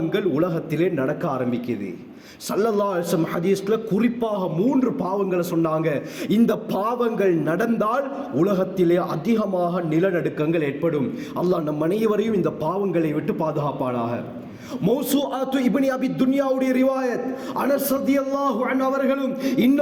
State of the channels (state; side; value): identical; both; correlation 1.00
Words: உலகத்திலே நடக்க ஆரம்பிக்குது. ஸல்லல்லாஹு அலைஹி வஸல்லம் ஹதீஸ்ல குறிப்பாக 3 பாவங்களை சொன்னாங்க. இந்த பாவங்கள் நடந்தால் உலகத்திலே அதிகமாக நிலநடுக்கங்கள் ஏற்படும். அல்லாஹ் நம் அனைவரையும் இந்த பாவங்களை விட்டு பாதுகாப்பானாக. மௌசூஆத்து இப்னு அபி துன்யாவுடைய ரிவாயத், அனஸ் ரலியல்லாஹு அன்ஹு அவர்களும்